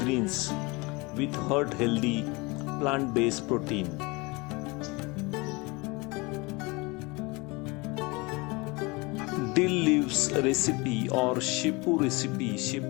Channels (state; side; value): quieter; right; 25.9 dB